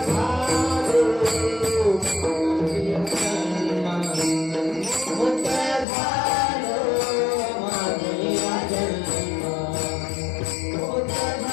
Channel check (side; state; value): right; drops out; at 5.9 s